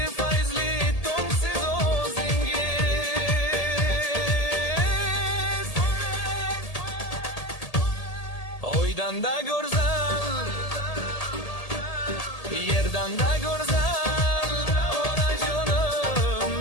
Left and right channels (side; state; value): right; late; 1.8 ms